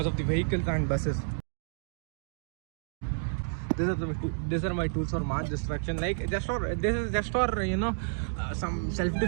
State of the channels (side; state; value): left; silent; digital silence